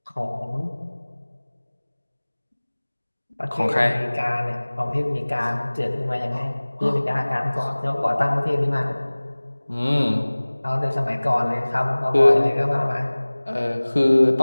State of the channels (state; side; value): inverted; both; correlation -1.00